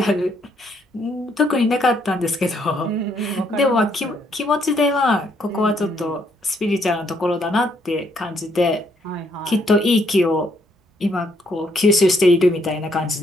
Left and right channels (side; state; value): both; normal; correlation 0.71